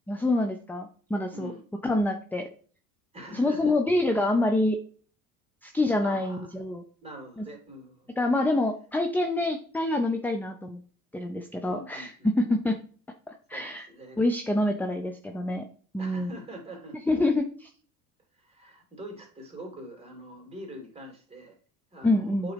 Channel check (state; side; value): normal; both; correlation 0.78